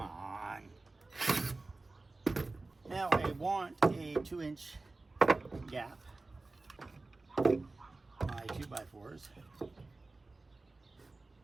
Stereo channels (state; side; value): quieter; left; 3.3 dB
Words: on. Now I want a 2-inch gap. My 2x4s.